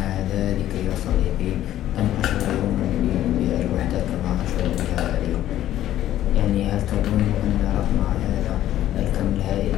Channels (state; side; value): quieter; right; 12.8 dB